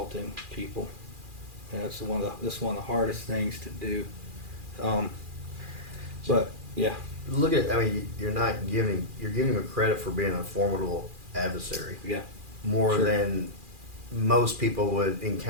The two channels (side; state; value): left; late; 2.4 ms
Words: people. And that's one of the hardest things to do. But yeah, Look at, I mean, you're giving him credit for being a formidable adversary. yeah, More Sure. than most people would